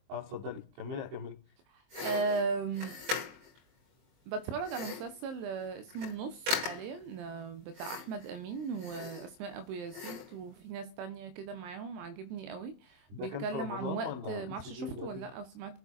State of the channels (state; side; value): late; left; 23 ms